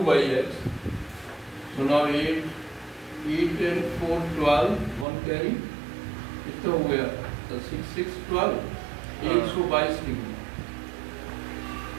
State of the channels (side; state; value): left; drops out; at 5.1 s